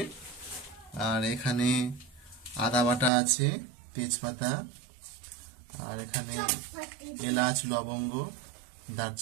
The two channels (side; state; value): left; drops out; at 3.1 s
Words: আর এখানে আদা বাটা আছে, তেজপাতা, আর এখানে এলাচ, লবঙ্গ,